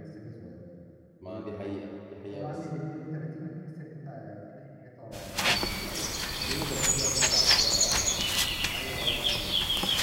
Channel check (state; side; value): identical; both; correlation 1.00